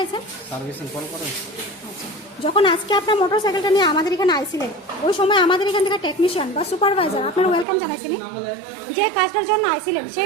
সার্ভিসিং কল করেন। আচ্ছা, যখন আজকে আপনার মোটর সাইকেলটা নিয়ে আমাদের এখানে আইছিলেন, ওই সময় আমাদের এখান থেকে টেকনিশিয়ান বা সুপারভাইজার আপনার ওয়েলকাম জানাইছিনি? যে কাজটার জন্য আইছিলেন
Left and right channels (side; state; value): left; drops out; at 7.7 s